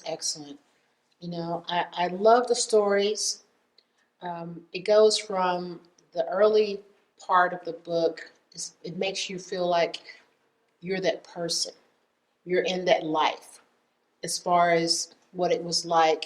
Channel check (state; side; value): identical; both; correlation 1.00